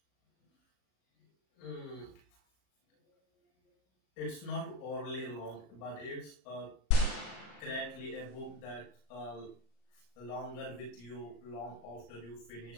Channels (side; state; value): right; late; 39 ms